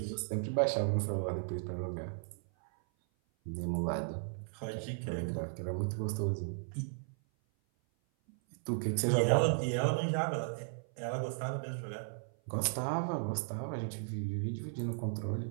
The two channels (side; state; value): left; silent; 54 dB below the other